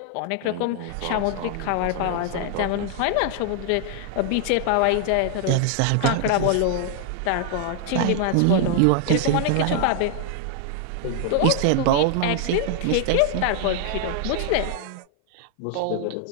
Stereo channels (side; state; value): both; different; correlation 0.00